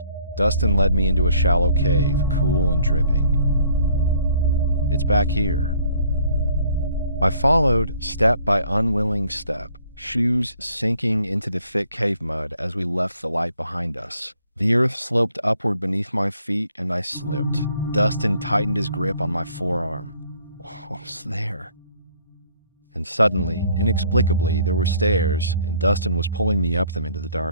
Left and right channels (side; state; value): both; inverted; correlation -0.61